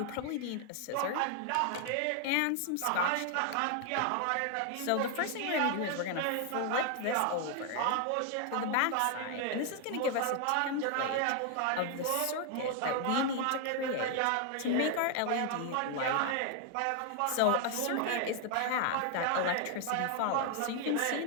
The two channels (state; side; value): different; both; correlation 0.00